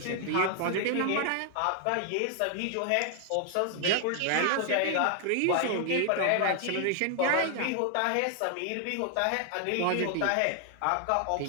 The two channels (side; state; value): both; different; correlation 0.00